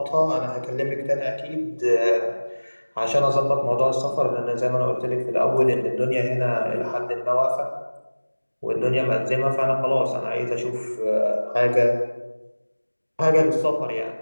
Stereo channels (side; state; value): both; inverted; correlation -1.00